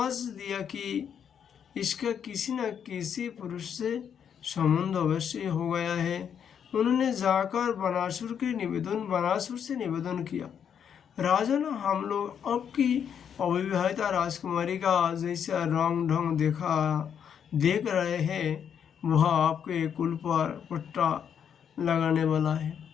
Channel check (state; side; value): quieter; right; 8.1 dB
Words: दिया कि इसका किसी न किसी पुरुष से संबंध अवश्य हो गया है। उन्होंने जाकर बनासुर से निवेदन किया, राजन, हम लोग आपकी अविवाहिता राजकुमारी का जैसा रंग ढंग देख रहे हैं, वह आपके कुल पर पट्टा लगाने वाला है।